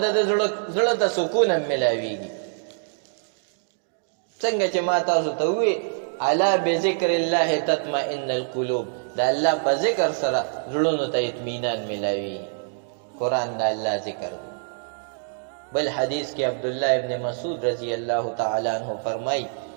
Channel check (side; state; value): left; silent; digital silence